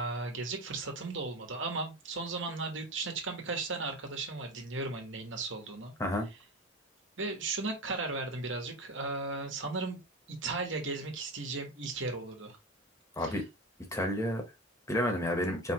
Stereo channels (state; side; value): normal; both; correlation 0.26